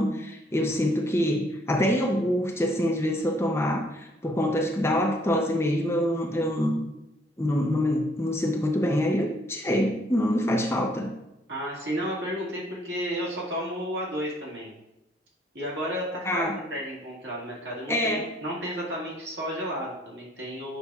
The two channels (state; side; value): normal; both; correlation 0.65